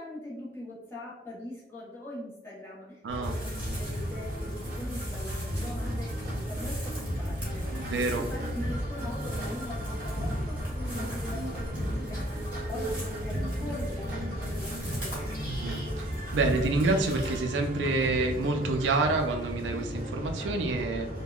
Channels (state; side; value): normal; both; correlation 0.56